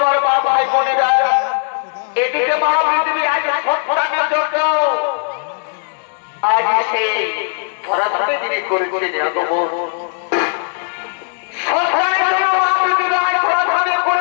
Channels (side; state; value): right; silent; digital silence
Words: মা ভাই বোনেরা, এদিকে মা পৃথিবী আজ সন্তানের জন্য আজ সেই ধরাধামে যিনি করেছেন আগমন, সন্তানের জন্য মা পৃথিবী আজ ধরাধামে